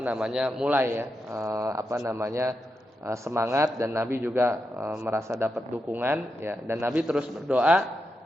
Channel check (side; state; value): both; normal; correlation 0.86